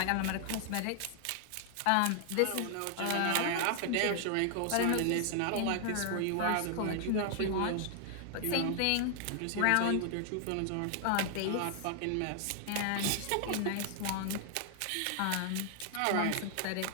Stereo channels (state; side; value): different; both; correlation 0.00